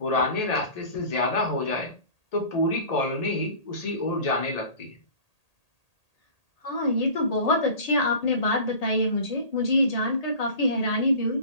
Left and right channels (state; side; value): late; right; 1.8 ms